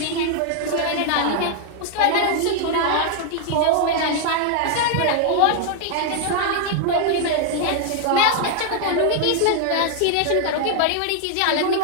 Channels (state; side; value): different; both; correlation 0.00